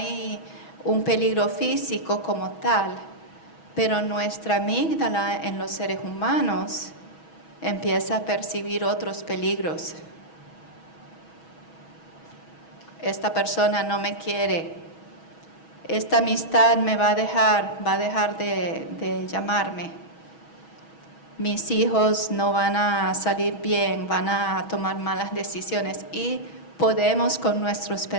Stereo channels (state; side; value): late; right; 6.2 ms